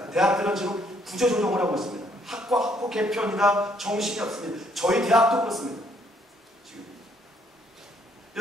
대학들은 지금 구조조정을 하고 있습니다. 학과 개편이다 정신이 없습니다. 저희 대학도 그렇습니다. 지금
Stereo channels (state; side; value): normal; both; correlation 0.68